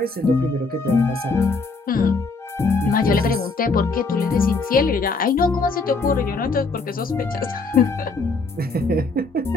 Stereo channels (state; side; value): quieter; right; 3.9 dB